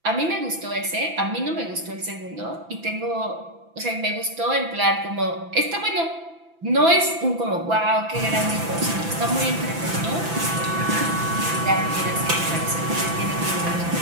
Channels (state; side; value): late; left; 6.0 ms